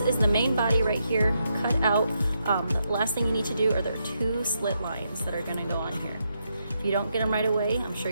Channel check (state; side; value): inverted; both; correlation -0.81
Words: the main body right here, cut out. The last thing you need to do are there are 2 slit lines that are gonna go on here. If you don't get them right away, I'm sure